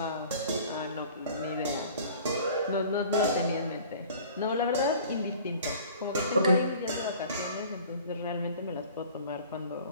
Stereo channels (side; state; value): both; inverted; correlation -0.47